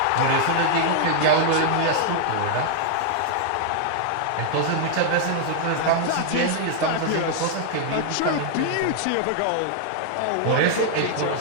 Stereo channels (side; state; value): both; different; correlation 0.00